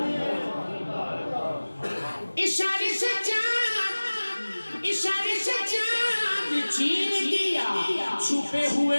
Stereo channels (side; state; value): both; inverted; correlation -1.00